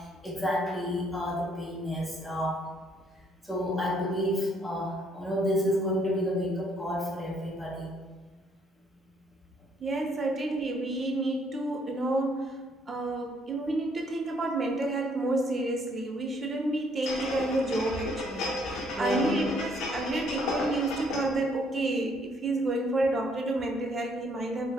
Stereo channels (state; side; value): normal; both; correlation 0.67